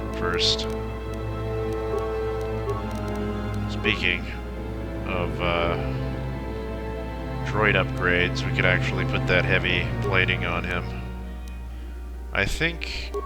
first? Speaking of droid upgrades, we could actually put that heavy plating on him. I think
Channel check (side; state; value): both; identical; correlation 1.00